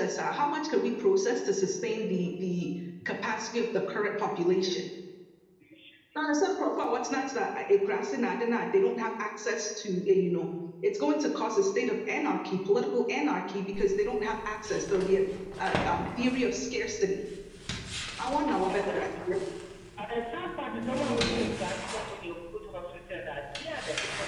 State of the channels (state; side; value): identical; both; correlation 1.00